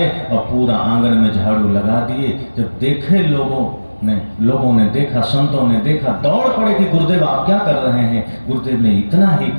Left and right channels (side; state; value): both; inverted; correlation -1.00